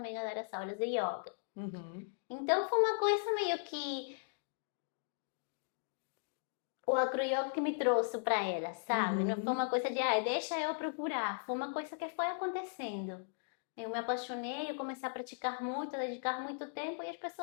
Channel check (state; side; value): silent; right; digital silence